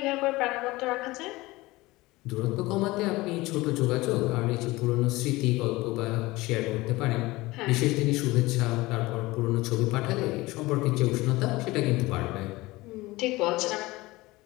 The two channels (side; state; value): right; quieter; 20.4 dB